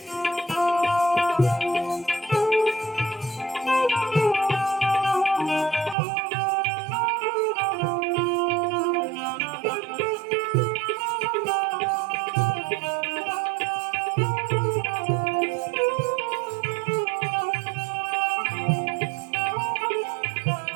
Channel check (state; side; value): drops out; left; at 6.0 s